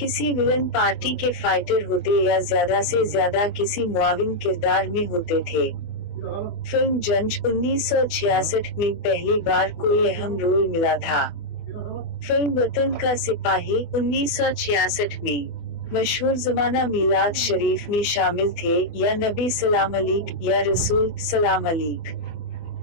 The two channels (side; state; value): right; late; 24 ms